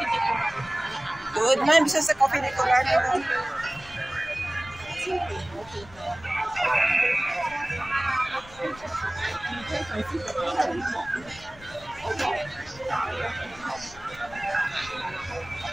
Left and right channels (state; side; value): noise; left; rumble, 21 dB below the sound